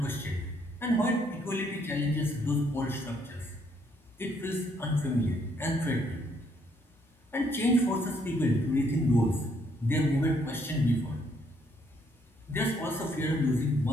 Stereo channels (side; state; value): both; normal; correlation 0.70